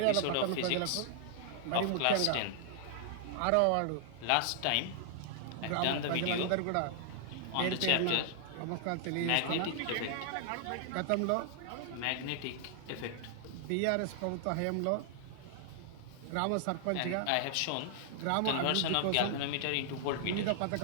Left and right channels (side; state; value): both; different; correlation -0.01